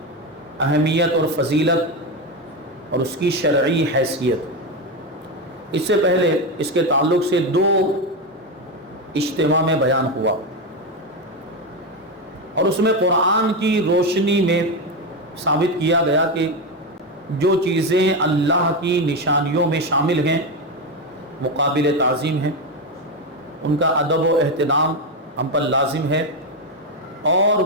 اہمیت اور فضیلت اور اس کی شرعی حیثیت۔ اس سے پہلے اس کے تعلق سے دو اجتماع میں بیان ہوا، اور اس میں قرآن کی روشنی میں ثابت کیا گیا کہ جو چیزیں اللہ کی نشانیوں میں شامل ہیں وہ قابل تعظیم ہیں، ان کا ادب و احترام ہم پر لازم ہے، اور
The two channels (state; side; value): normal; both; correlation 0.12